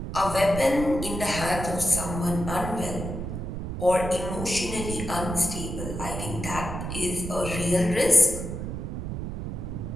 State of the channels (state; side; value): noise; right; rumble, 6 dB below the sound